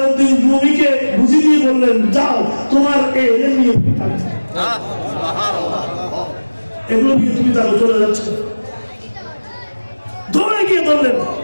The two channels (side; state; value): both; inverted; correlation -1.00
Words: রুমিকে বুঝিয়ে দিয়ে বললেন যাও তোমার এলেম নিয়ে এগুলো নিয়ে তুমি তাহলে চলে যাচ্ছ। ধরে গিয়ে ধরলেন,